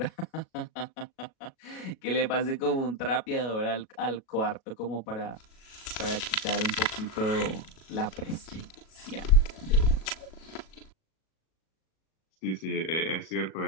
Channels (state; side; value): late; right; 37 ms